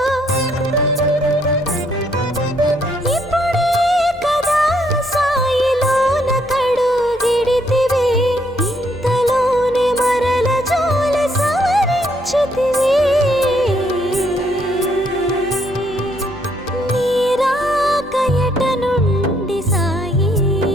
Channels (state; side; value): noise; left; hum, 25 dB below the sound